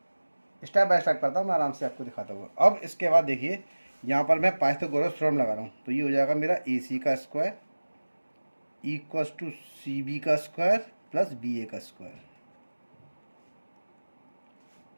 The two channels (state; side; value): inverted; both; correlation -1.00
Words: स्टेप बाय स्टेप करता हूँ मैं, आराम से आपको दिखाता हूँ। अब इसके बाद देखिए यहाँ पर मैं पाइथागोरस थ्योरम लगा रहा हूँ, तो ये हो जाएगा मेरा ए सी का square equals to C B का स्क्वायर प्लस बी ए का स्क्वायर।